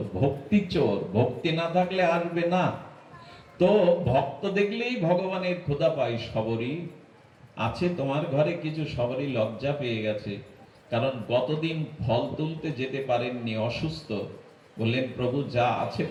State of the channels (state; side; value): identical; both; correlation 1.00